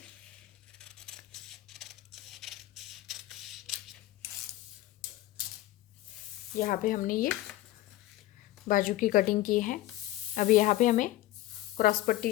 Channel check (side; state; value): right; quieter; 16.1 dB